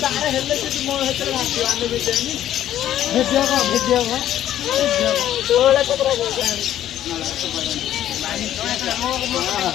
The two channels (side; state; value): right; quieter; 11.9 dB